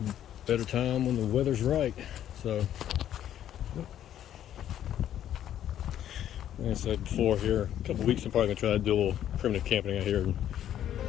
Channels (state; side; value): quieter; right; 11.0 dB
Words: better time when the weather's right. So like I said before, here a couple weeks I'm probably gonna try to do a little primitive camping out here and